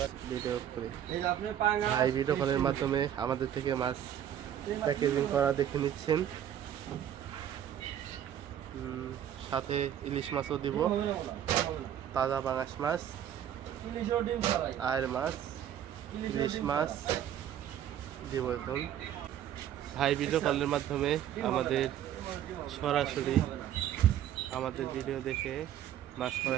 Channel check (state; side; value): quieter; left; 10.4 dB